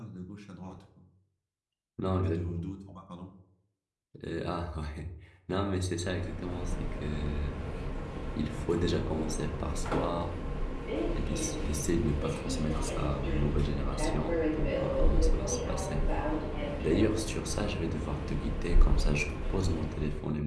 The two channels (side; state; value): both; identical; correlation 1.00